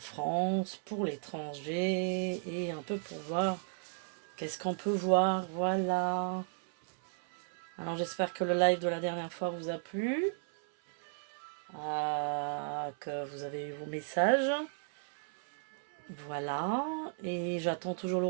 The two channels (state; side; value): silent; left; 55 dB below the other